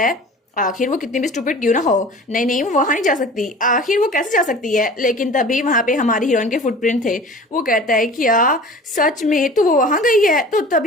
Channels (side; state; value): both; normal; correlation 0.42